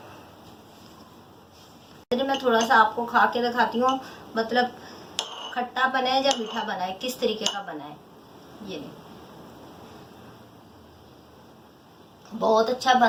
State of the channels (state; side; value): identical; both; correlation 1.00